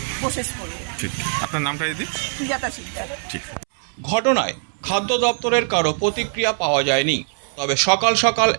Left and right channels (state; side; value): silent; left; 63 dB below the other